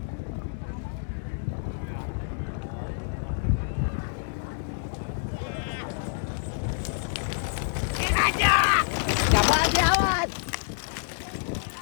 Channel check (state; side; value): silent; right; digital silence